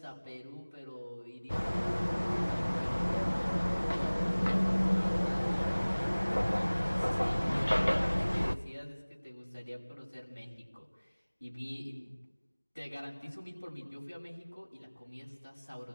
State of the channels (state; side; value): inverted; both; correlation -1.00